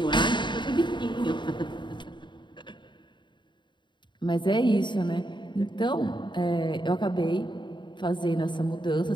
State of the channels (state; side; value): late; right; 0.23 ms